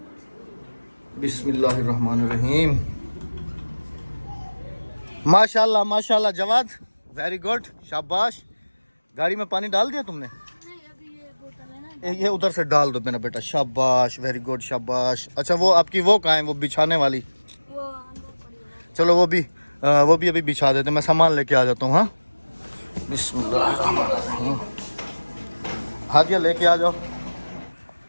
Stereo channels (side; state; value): both; inverted; correlation -1.00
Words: बिस्मिल्लाहिर्रहमानिर्रहीम माशाल्लाह माशाल्लाह जवाद वेरी गुड, शाबाश। गाड़ी में पानी डाल दिया तुमने? ये उधर से डाल दो मेरा बेटा, शाबाश, वेरी गुड, शाबाश। अच्छा वो आपकी वो कहाँ है, वो बिछाने वाली? चलो वो भी अभी बिछा देते, मैं सामान लेके आ जाता हूँ। हाँ, बिस्मिल्लाह। हादिया लेके आ जाओ।